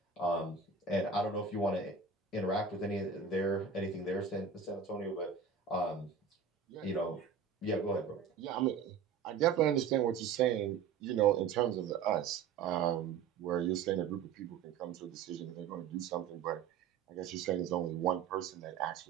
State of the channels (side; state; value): left; quieter; 6.3 dB